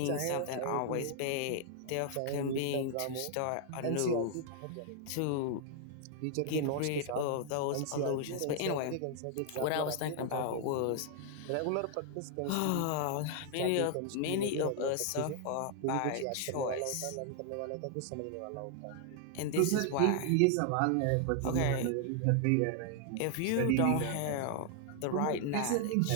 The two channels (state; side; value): different; both; correlation 0.00